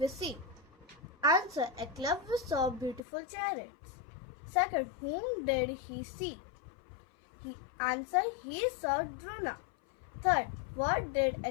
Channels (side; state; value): right; drops out; at 3.0 s